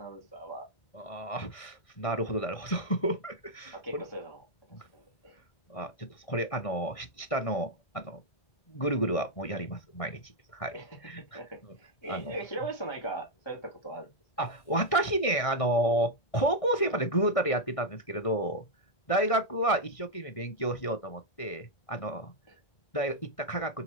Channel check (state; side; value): late; right; 1.6 ms